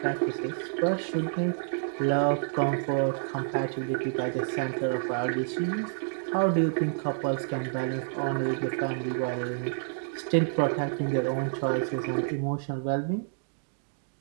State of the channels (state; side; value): silent; left; digital silence